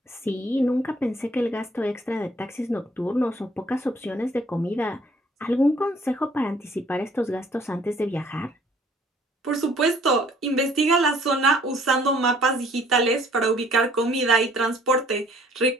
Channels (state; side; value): normal; both; correlation 0.59